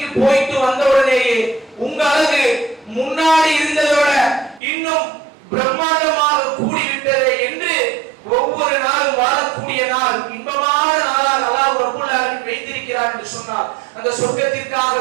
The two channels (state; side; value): drops out; left; at 4.6 s